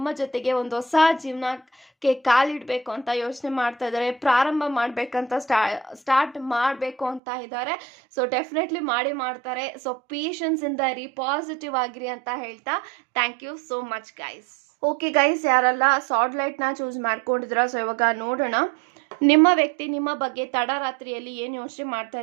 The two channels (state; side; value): drops out; left; at 7.2 s